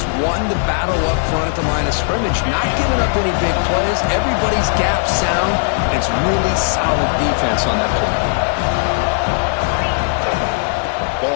won the battle up front at the line of scrimmage, not giving up any big plays. Everybody's gap sound. It's really solid defense on that play.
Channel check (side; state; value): right; silent; 68 dB below the other